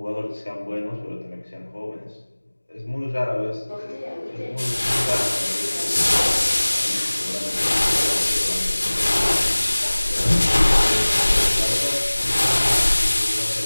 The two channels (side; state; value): both; inverted; correlation -1.00